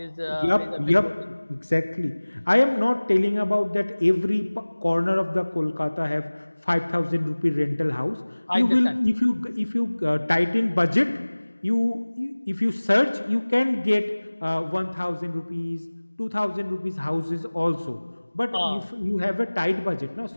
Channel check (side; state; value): both; inverted; correlation -1.00